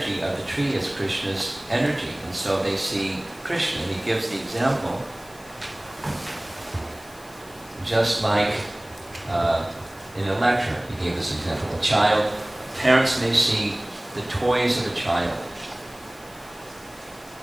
of the tree is Krishna's energy. And so they see Krishna. And he gives the example, just like in a lecture, he gave this example. A child, parents may see the toys of a child.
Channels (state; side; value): noise; left; hiss, 23 dB below the sound